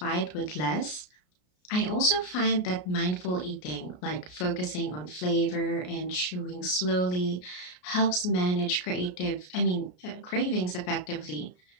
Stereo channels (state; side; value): late; right; 33 ms